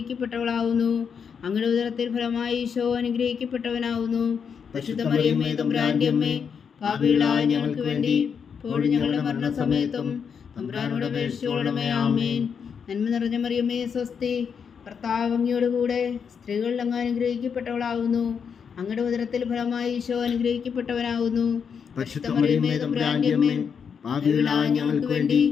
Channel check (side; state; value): right; quieter; 6.7 dB